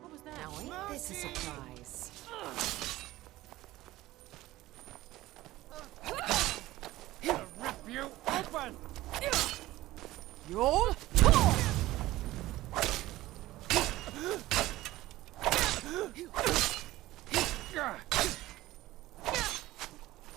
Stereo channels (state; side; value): quieter; left; 16.9 dB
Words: that? Now ain't this a surprise? I'll rip you open! You're